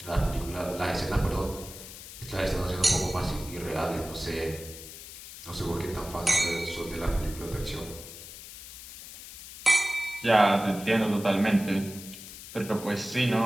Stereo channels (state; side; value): noise; left; hiss, 14 dB below the sound